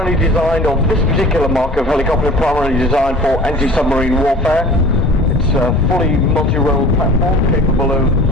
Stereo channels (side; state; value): both; normal; correlation 0.44